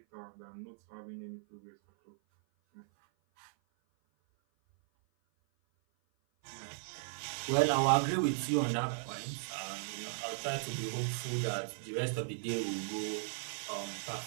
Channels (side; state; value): left; silent; 53 dB below the other